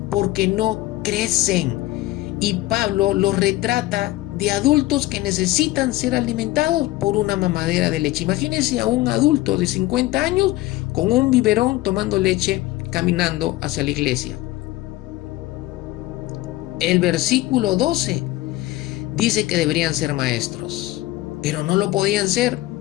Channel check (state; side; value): quieter; right; 17.5 dB